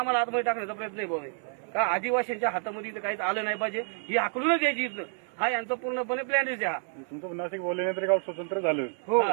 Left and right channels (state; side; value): silent; left; 57 dB below the other